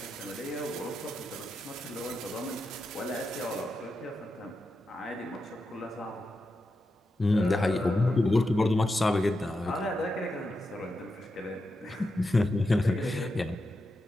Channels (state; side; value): normal; both; correlation 0.88